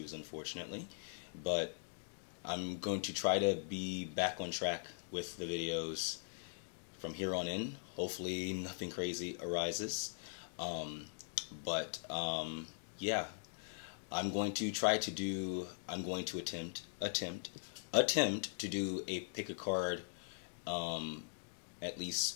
unfortunately, but I'm going to try to be back on track with the videos from here on in. Hopefully nothing crazy arises, yeah, I'm going to attempt to do a pick a card at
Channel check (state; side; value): silent; right; digital silence